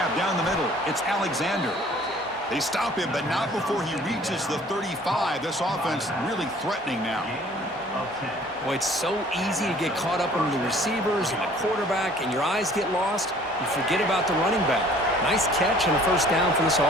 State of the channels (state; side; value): normal; both; correlation 0.54